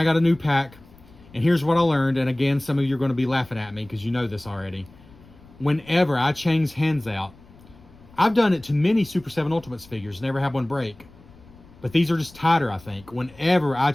got a new pack. And here's what I learned. And again, some of you are going to be laughing at me because you know this already. Whenever I change hands out, I've done it to many Super 7 Ultimates figures, never had one break. But these are just tighter, I think. Whenever I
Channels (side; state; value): left; noise; rumble, 24 dB below the sound